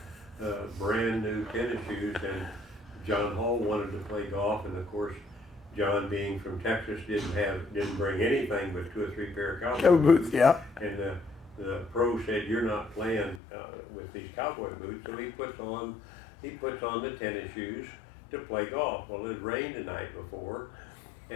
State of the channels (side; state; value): right; drops out; at 13.4 s